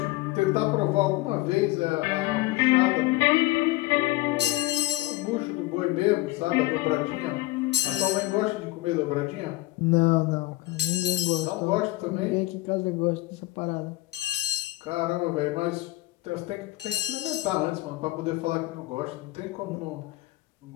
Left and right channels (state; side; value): quieter; right; 19.4 dB